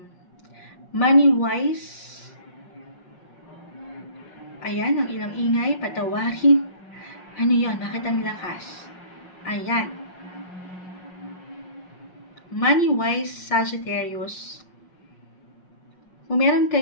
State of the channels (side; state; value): right; late; 5.5 ms